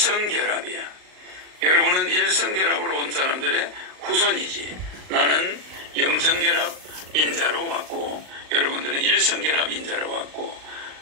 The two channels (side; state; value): left; late; 39 ms